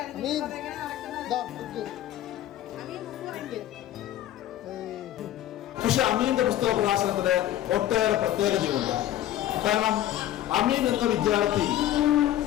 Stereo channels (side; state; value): right; quieter; 12.8 dB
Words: പക്ഷെ അമീന്റെ പുസ്തക പ്രകാശനത്തിന് ഒട്ടേറെ പ്രത്യേകതയുണ്ട്. കാരണം അമീൻ എന്ന വിദ്യാർത്ഥി